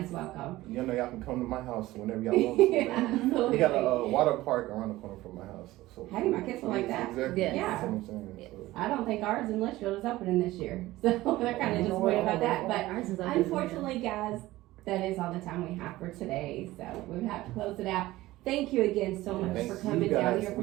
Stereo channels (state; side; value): quieter; left; 17.4 dB